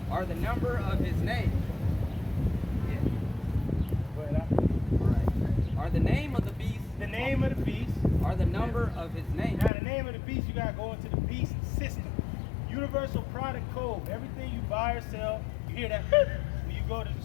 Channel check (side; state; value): right; drops out; at 9.7 s